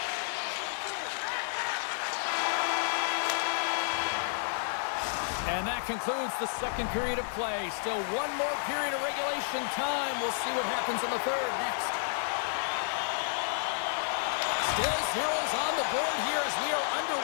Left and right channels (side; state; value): right; silent; digital silence